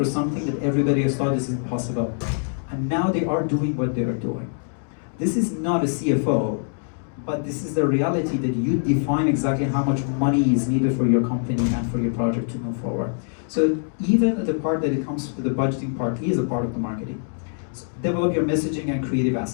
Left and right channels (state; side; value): silent; right; 63 dB below the other